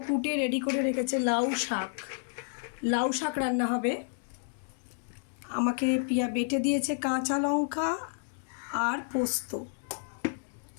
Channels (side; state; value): right; silent; digital silence